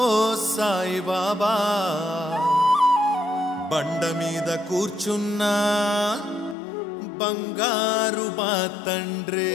సాయి బాబా బండ మీద కూర్చున్నా బంగారు మా తండ్రి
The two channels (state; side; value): drops out; right; at 6.6 s